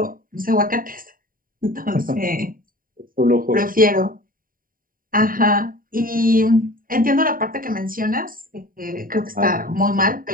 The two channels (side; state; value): left; late; 0.41 ms